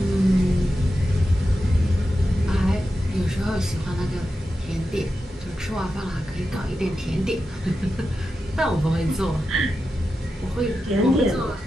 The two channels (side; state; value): both; normal; correlation 0.90